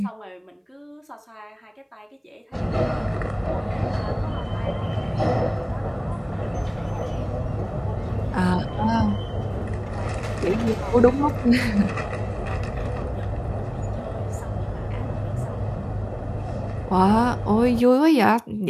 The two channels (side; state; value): both; identical; correlation 1.00